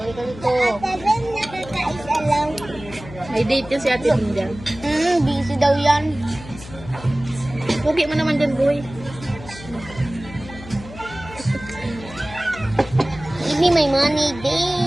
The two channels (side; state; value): left; noise; hum, 15 dB below the sound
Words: dito. Nakakaisa lang. May date yun si Ate Linda. Busy daw yan. Pugi mo naman dyan, boy. Give me my money,